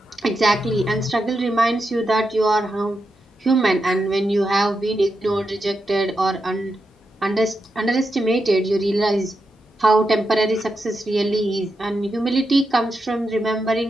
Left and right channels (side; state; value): both; normal; correlation 0.86